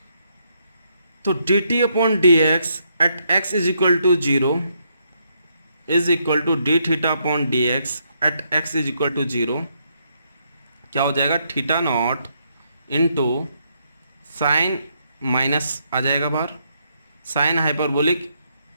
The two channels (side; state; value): both; inverted; correlation -0.76